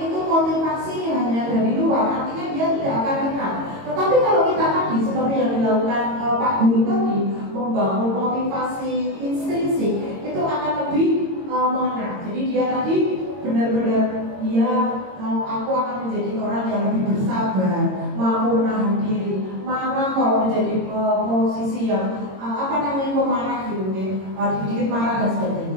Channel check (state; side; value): late; left; 22 ms